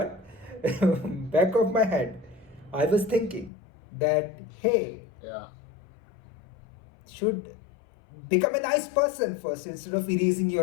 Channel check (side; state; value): right; drops out; at 3.5 s